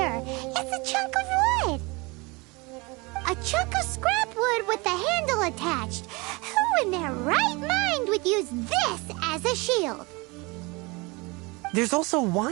It's a chunk of wood. A chunk of scrap wood with the handle attached. Who in their right mind would use this as a shield? There's also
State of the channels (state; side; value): quieter; left; 26.0 dB